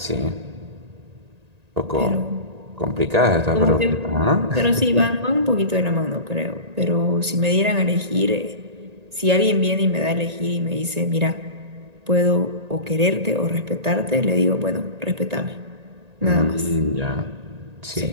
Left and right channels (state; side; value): late; left; 1.9 ms